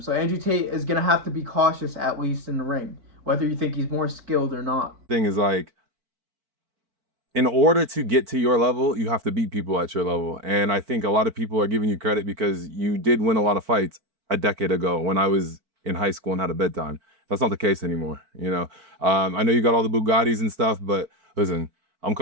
So Andrew Tate is going to have to be cautious, at least in the ring, whether you think he's more skilled or not. Thing is, like, in order to get to your level, you have to beat people at your level. And I think a lot of people are giving you credit because you did win a lot of fights a decade ago when I was in high school and had a bedtime. That's not the case anymore, I know you got all the Bugattis and stuff, but listen, I'm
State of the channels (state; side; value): late; left; 4.5 ms